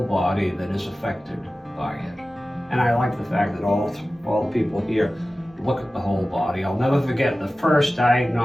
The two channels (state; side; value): normal; both; correlation 0.96